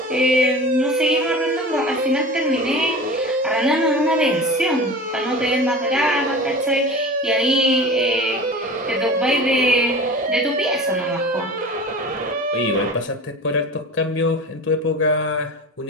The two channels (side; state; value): both; normal; correlation 0.35